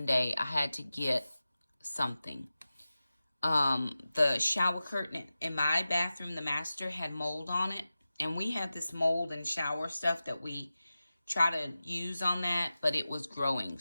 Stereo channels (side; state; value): both; inverted; correlation -0.95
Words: I had to get something. The shower curtain in my bathroom, the master, had mold on it. And we have this mold and shower stuff that we try to use on that, but it was growing.